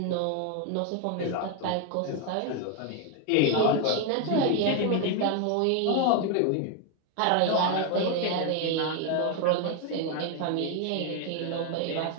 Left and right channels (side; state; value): both; different; correlation 0.01